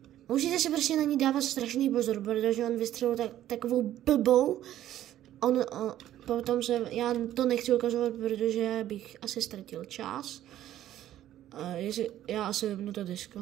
Musíte si prostě na ní dávat strašný pozor, protože on vystřelil takovou blbou. Potom já to nechci ukazovat, protože bych asi ztratil čas. Já asi vypnu to disko.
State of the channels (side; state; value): left; quieter; 12.6 dB